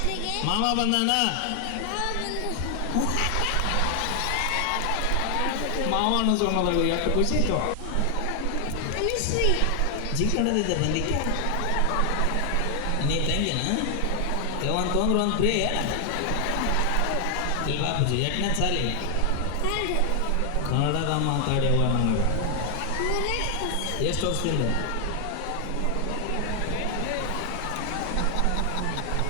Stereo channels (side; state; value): both; different; correlation 0.00